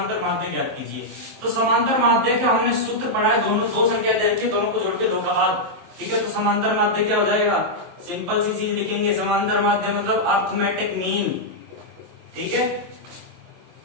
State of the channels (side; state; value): left; late; 23 ms